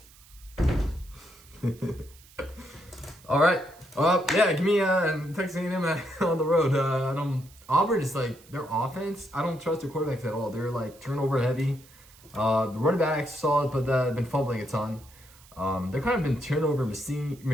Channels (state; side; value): noise; right; hiss, 25 dB below the sound